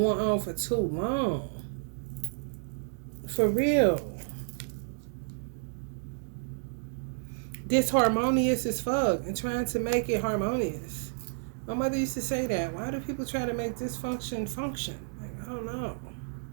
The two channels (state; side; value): silent; left; digital silence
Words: on for too long. For real. Disharmonious as fuck and trying to make it harmonious. My mother used to say that. Why do people try to make dysfunction function? Like, I don't know.